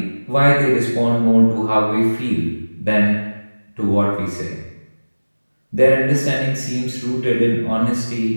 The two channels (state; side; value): inverted; both; correlation -1.00